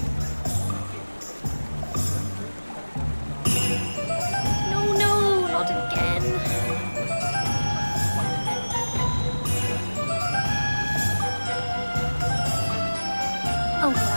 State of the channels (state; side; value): inverted; both; correlation -1.00